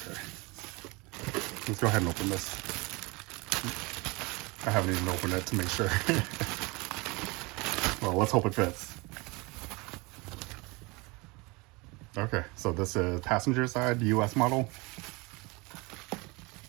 Let's go ahead and open this. I haven't even opened it to make sure. Well, let's hope it fits. Okay, so this is passenger side, US model.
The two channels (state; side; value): quieter; left; 25.9 dB